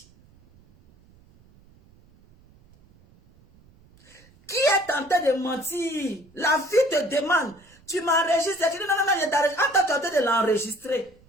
Qui est tenté de mentir? La fille te demande, tu m'enregistres? Tu dis, non, non, non, je t'enregistre. Attends, tu es en train de l'enregistrer.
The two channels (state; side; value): noise; right; rumble, 29 dB below the sound